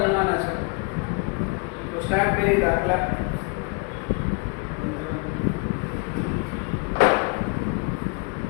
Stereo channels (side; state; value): right; quieter; 30.9 dB